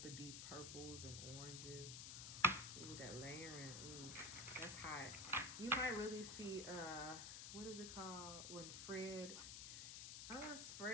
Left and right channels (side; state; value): left; noise; hiss, 6 dB below the sound